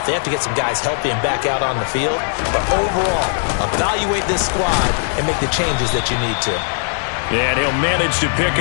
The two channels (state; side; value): silent; right; 67 dB below the other